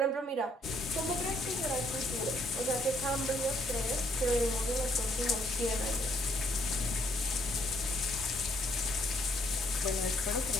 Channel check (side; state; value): both; normal; correlation 0.68